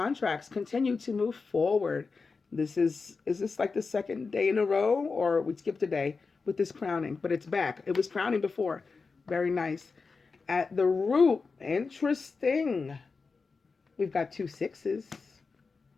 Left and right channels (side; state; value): right; quieter; 4.6 dB